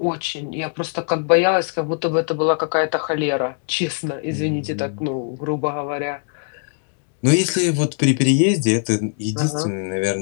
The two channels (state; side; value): silent; right; 65 dB below the other